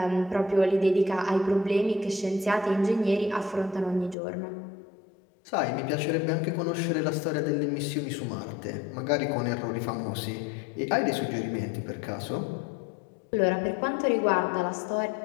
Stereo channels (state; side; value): drops out; right; at 4.2 s